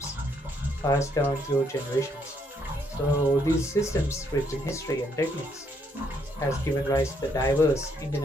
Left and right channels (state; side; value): normal; both; correlation 0.72